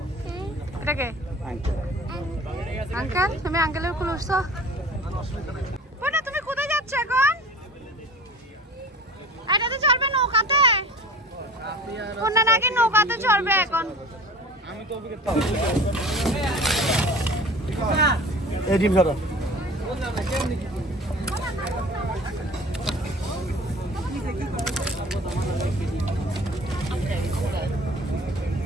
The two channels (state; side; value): normal; both; correlation 0.42